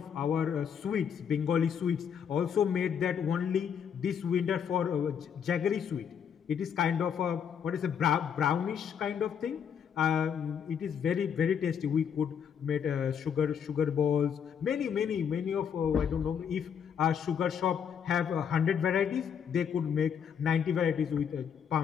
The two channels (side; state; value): right; quieter; 7.7 dB